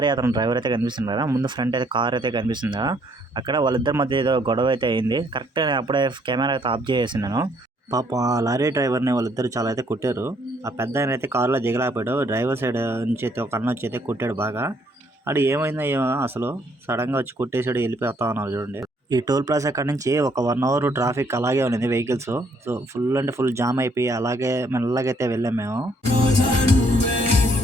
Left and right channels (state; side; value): normal; both; correlation 0.67